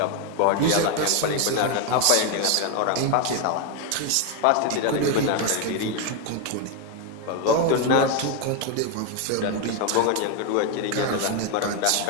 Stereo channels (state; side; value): different; both; correlation 0.01